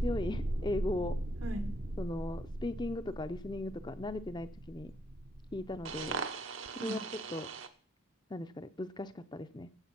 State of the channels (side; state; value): both; normal; correlation 0.73